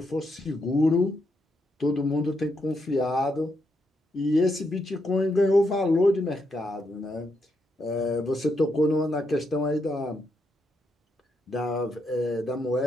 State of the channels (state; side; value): normal; both; correlation 0.80